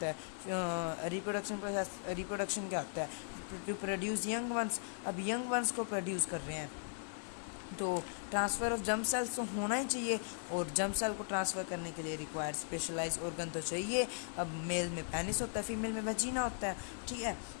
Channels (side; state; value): right; silent; digital silence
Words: है? रिप्रोडक्शन क्या होता है? To produce young ones. अब यंग वंस को प्रोड्यूस कर रहे हैं, तो ट्रांसफ़र ऑफ जर्म सेल्स तो होना ही चाहिए, और जर्म सेल को ट्रांसफ़र करने के लिए रिक्वायर्ड स्पेशलाइज्ड ऑर्गन तो चाहिए. अब मेल में पेनिस होता है, फीमेल में वैजिना होता है, ठीक है.